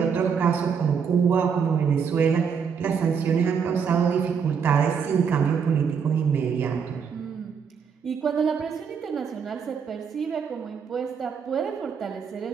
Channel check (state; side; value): quieter; left; 6.6 dB